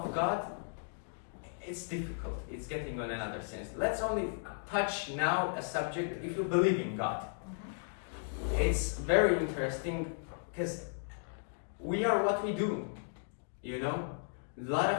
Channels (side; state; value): right; silent; digital silence